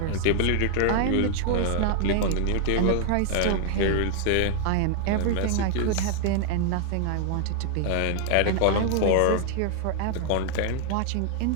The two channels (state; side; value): different; both; correlation 0.00